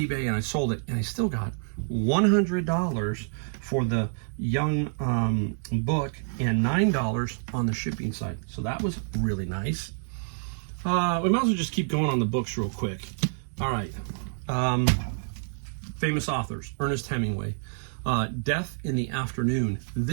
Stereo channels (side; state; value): left; silent; digital silence